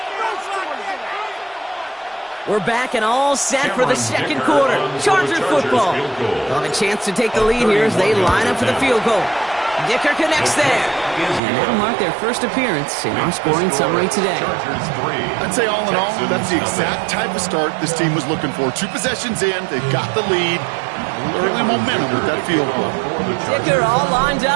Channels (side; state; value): left; drops out; at 11.4 s